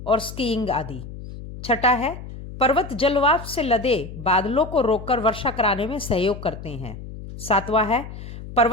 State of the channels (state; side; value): noise; left; hum, 12 dB below the sound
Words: और स्कीइंग आदि। छठा है, पर्वत जलवाष्प से लदे बादलों को रोककर वर्षा कराने में सहयोग करते हैं। सातवां है,